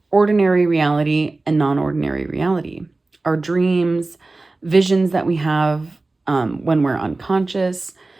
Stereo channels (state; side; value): quieter; left; 3.3 dB